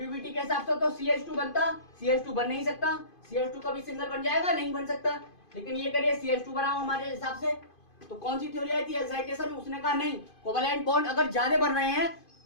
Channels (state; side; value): late; right; 2.5 ms